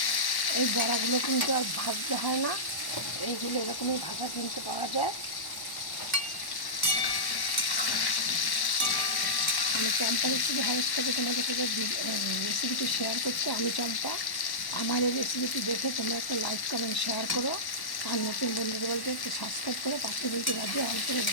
এই বড়াগুলো কিন্তু আর ভাজতে হয় না, এইগুলো এরকমই ভাজা কিনতে পাওয়া যায়। আমি চম্পা রেসিপি হাউস থেকে তোমাদের সাথে রেসিপিটি শেয়ার করছি। আমি চম্পা। আমার এই রেসিপিটি দেখে তোমরা একটা লাইক কমেন্ট শেয়ার করো, আর নতুন বন্ধুদের বলতে একটু সাবস্ক্রাইব করে পাশে বলতে বাজিয়ে অল করে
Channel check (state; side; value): late; right; 1.1 ms